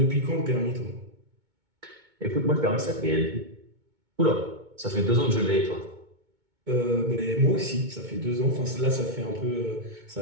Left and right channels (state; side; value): late; left; 2.2 ms